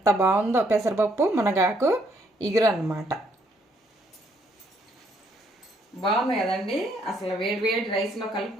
బాగుందో పెసరపప్పు మునగాకు ఇగురు అన్నమాట. బాగుంది కదండి. అసలు వేడి రైస్లో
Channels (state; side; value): normal; both; correlation 0.70